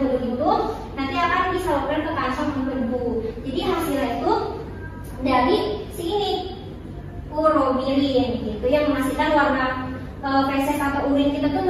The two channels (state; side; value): identical; both; correlation 1.00